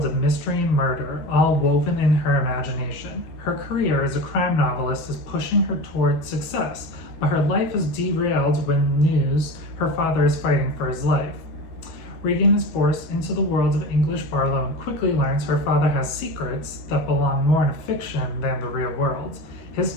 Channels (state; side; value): late; right; 12 ms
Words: of mystery and murder, all woven in her imagination. Her career as a crime novelist is pushing her toward success, but her life is derailed when news her father is fighting for his life. Reagan is forced into the world of English Barlowe and quickly learns her father has secrets that belong more in fiction than the real world. His